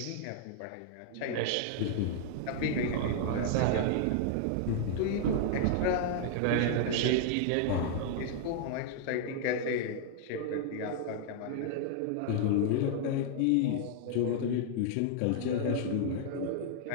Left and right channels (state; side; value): different; both; correlation -0.01